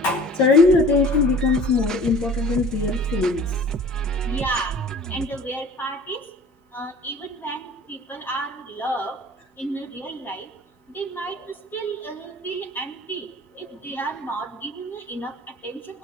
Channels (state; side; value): normal; both; correlation 0.45